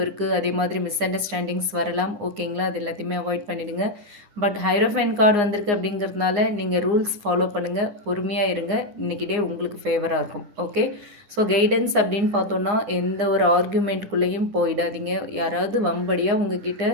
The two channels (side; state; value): left; late; 9.7 ms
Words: இருக்குது. அதே மாதிரி மிஸ் அண்டர்ஸ்டாண்டிங்ஸ் வரலாம். ஓகேங்களா, அது எல்லாத்தையுமே அவாய்ட் பண்ணிவிடுங்க. பட் ஹைரோஃபைன் கார்டு வந்திருக்கு அப்படிங்கிறதுனால நீங்கள் ரூல்ஸ் ஃபாலோ பண்ணுங்கள், பொறுமையாக இருங்க. இன்றைக்கி டே உங்களுக்கு ஃபேவராக இருக்கும். ஓகே, ஸோ கைடன்ஸ் அப்படின்னு பார்த்தோன்னா எந்த ஒரு ஆர்கியூமெண்ட்டுக்குள்ளேயும் போயிடாதீங்க. யாராவது வம்படியாக உங்ககிட்ட